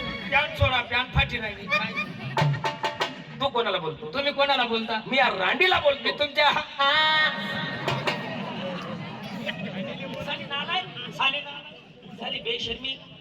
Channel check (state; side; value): identical; both; correlation 1.00